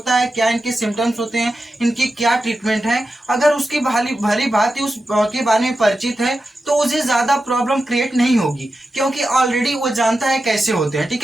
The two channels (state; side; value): normal; both; correlation 0.91